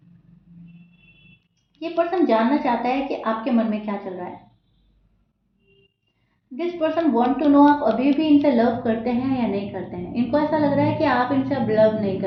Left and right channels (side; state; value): both; identical; correlation 1.00